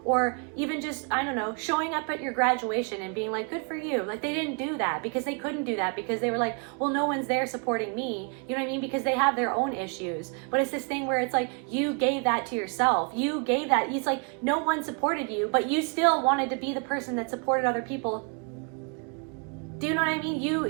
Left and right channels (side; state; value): left; quieter; 35.5 dB